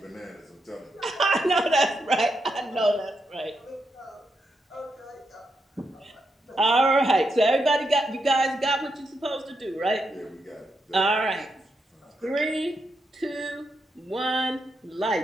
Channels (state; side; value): normal; both; correlation 0.83